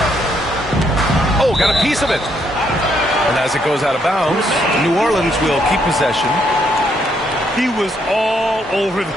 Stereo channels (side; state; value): both; normal; correlation 0.73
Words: Oh, got a piece of it. And as it goes out of bounds, New Orleans will keep possession. He was all over